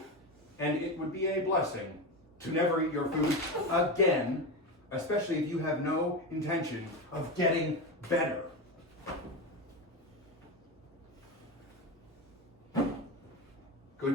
And it would be a blessing to never eat your food again, especially if you have no intention of getting better.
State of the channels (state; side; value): normal; both; correlation 0.18